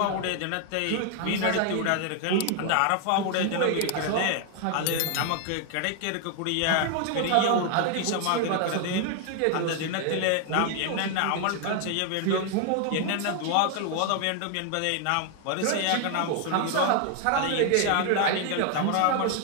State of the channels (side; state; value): both; different; correlation 0.00